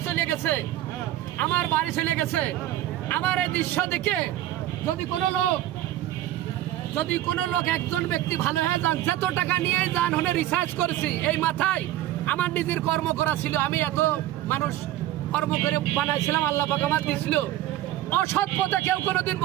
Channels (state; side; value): quieter; left; 13.8 dB